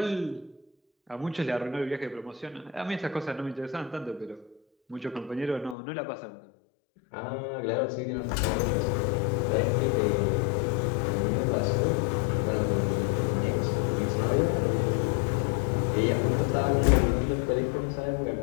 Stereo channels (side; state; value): right; drops out; at 5.8 s